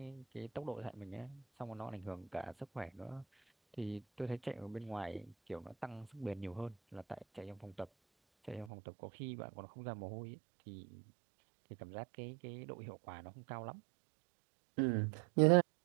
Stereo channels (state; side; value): drops out; left; at 8.7 s